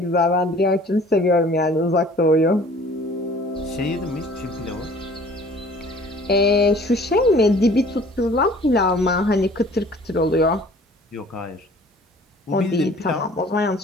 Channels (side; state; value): both; normal; correlation 0.51